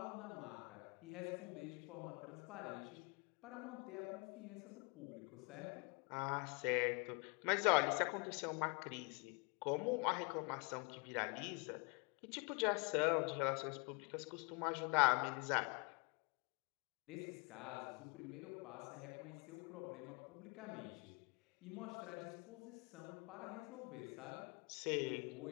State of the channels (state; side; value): quieter; right; 33.2 dB